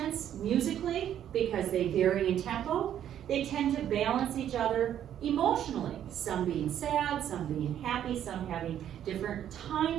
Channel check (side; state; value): left; quieter; 10.4 dB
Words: musically, because they vary in tempo. They tend to balance each other emotionally, some being sad, some being happy, some having different